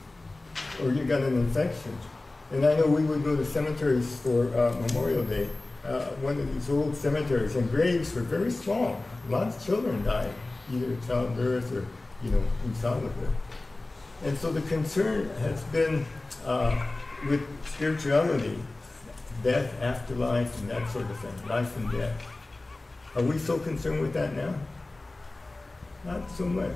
or you got an infection. And I know we would go to cemeteries for Memorial Day, one of these old cemeteries, and graves were very small. Lots of children died, either childbirth or, you know, in childhood. And so the concern has been with spirituality, death, afterlife, and that sort of thing, life and death. Are we so concerned with that now? Not so much,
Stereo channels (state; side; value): quieter; right; 3.0 dB